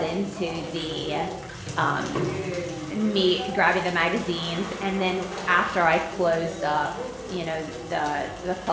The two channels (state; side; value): identical; both; correlation 1.00